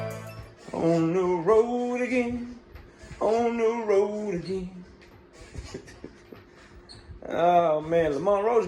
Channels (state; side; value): identical; both; correlation 1.00